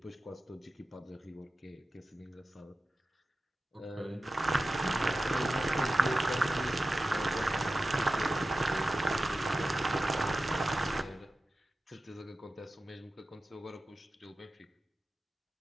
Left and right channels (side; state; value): both; normal; correlation 0.94